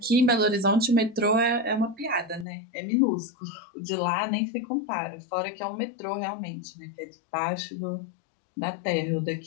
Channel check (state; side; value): drops out; right; at 2.5 s